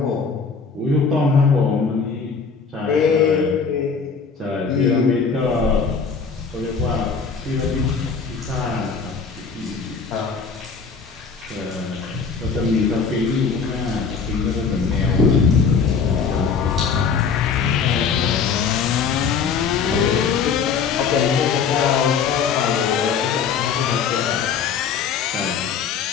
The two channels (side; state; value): right; quieter; 5.8 dB